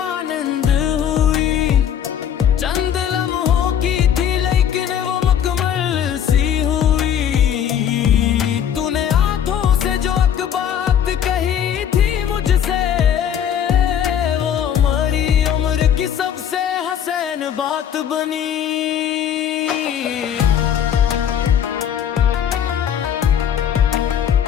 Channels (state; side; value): quieter; right; 9.1 dB